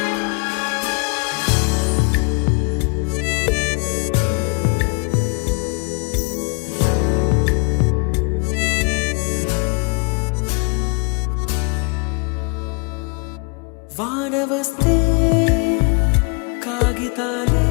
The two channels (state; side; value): quieter; right; 33.9 dB